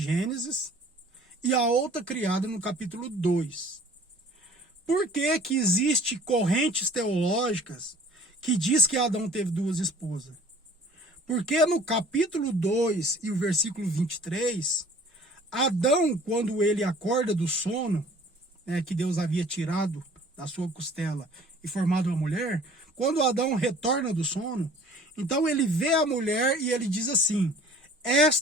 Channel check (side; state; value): both; normal; correlation 0.51